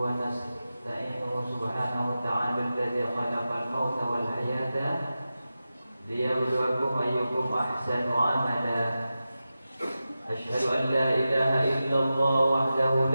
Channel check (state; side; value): inverted; both; correlation -0.93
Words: ونستعينه سبحانه وتعالى الذي خلق الموت والحياة ليبلوكم أيكم أحسن عملا أشهد أن لا إله إلا الله وحده